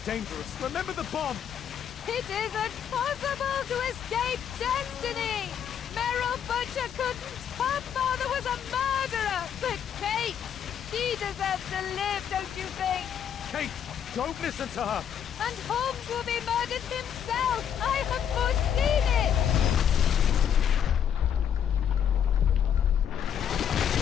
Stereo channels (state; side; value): quieter; right; 8.8 dB